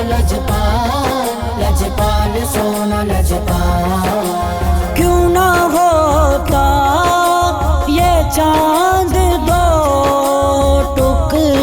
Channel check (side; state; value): both; identical; correlation 1.00